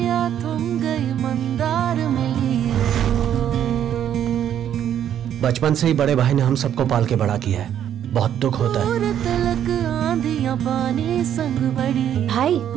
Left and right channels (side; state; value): left; quieter; 10.0 dB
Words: थम गई मंदार मिली। बचपन से ही बड़े भाई ने हम सबको पाल के बड़ा किया है, बहुत दुख होता है। तलक आंधियां पानी संग बड़ी। भाई